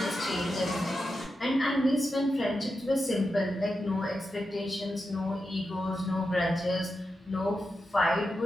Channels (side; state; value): both; normal; correlation 0.89